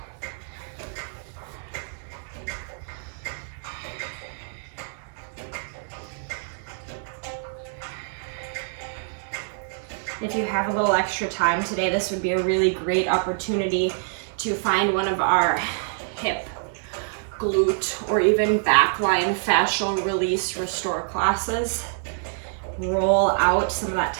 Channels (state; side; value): silent; left; digital silence